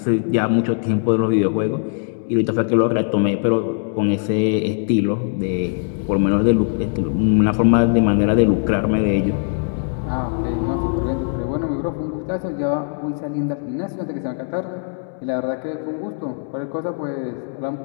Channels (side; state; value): right; silent; digital silence